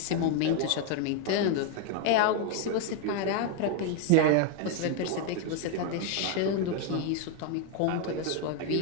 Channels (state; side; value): different; both; correlation 0.01